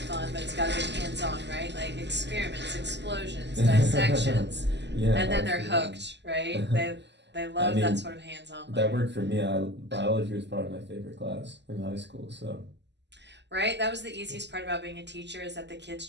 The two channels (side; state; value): left; late; 0.51 ms